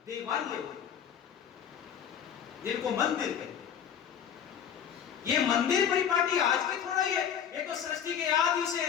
देवालय, जिनको मंदिर कहते हैं। ये मंदिर परिपाटी आज के थोड़ा ही है, ये तो सृष्टि के आदि से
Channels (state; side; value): quieter; right; 8.6 dB